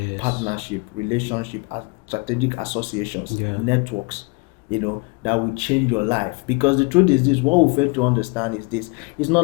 partnership, relationship, strategic associations, networks, you know, that will change your life. Because the truth is this, what we fail to understand is this: it's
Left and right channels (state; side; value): quieter; right; 29.2 dB